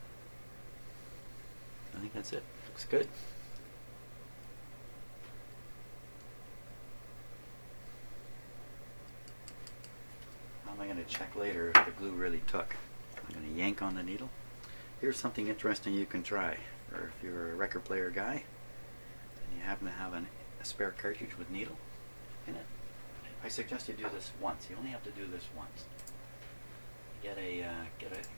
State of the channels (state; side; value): inverted; both; correlation -1.00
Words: I think that's it. Looks good. How am I going to check later if the glue really took? I'm going to yank on the needle. Here's something interesting you can try. Or if you're a record player guy and you happen to have a spare cartridge with needle in it, I suggest you do this once. You only have to do this once.